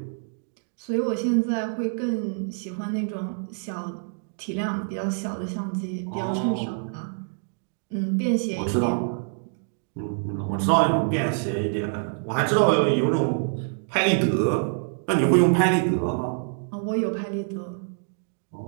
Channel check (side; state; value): left; silent; 61 dB below the other